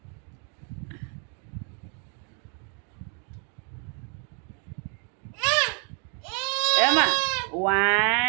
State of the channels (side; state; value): left; quieter; 39.8 dB